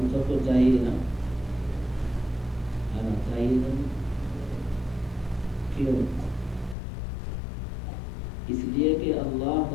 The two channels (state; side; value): drops out; right; at 6.8 s